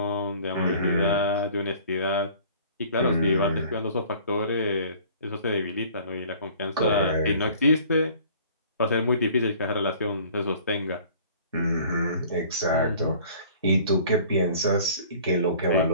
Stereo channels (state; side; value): inverted; both; correlation -0.50